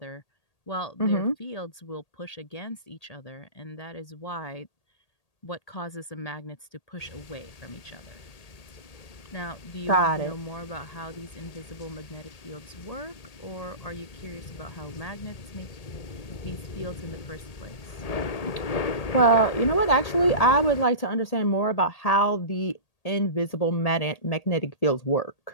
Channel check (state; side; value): late; right; 1.8 ms